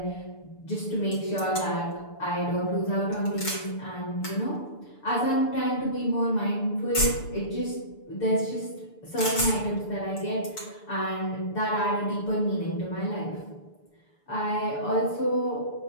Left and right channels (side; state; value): right; late; 6.8 ms